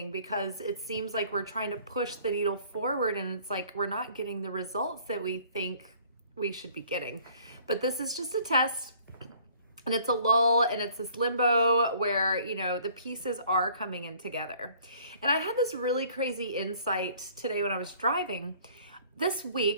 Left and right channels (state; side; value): inverted; both; correlation -0.56